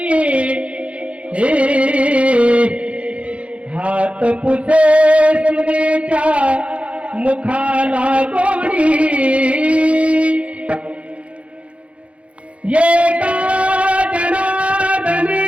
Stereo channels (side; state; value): left; late; 0.062 ms